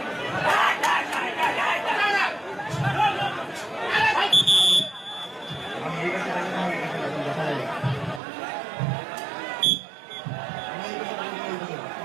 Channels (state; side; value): drops out; left; at 8.2 s